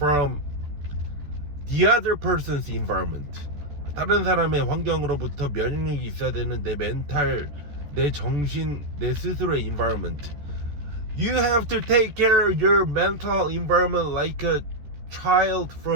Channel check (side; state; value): left; late; 14 ms